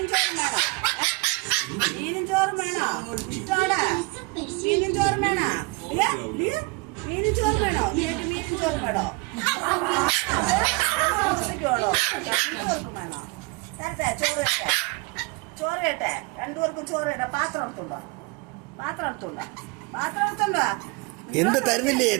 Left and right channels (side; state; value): left; quieter; 26.7 dB